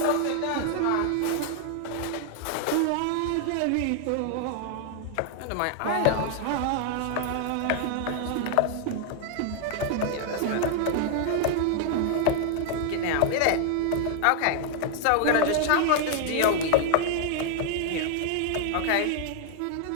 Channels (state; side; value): different; both; correlation 0.00